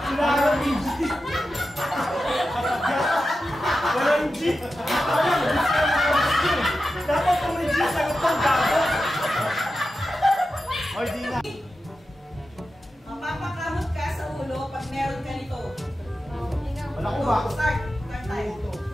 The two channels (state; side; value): normal; both; correlation 0.91